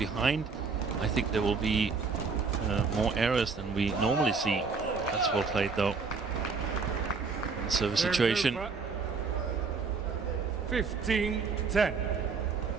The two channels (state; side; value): quieter; left; 4.8 dB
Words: I think there will be more errors than we normally see. That's well played though. Service situation. 15-10.